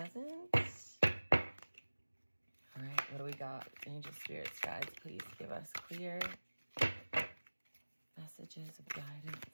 All right, what do we got? Angel Spirits, guides, please give us clear messages of guidance.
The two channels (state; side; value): inverted; both; correlation -1.00